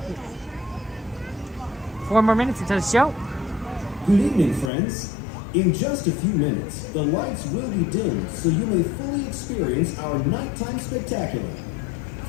4 more minutes into the show. Good evening, friends. In just a few minutes, the lights will be dimmed so you may fully experience our nighttime spectacular.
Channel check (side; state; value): right; drops out; at 4.7 s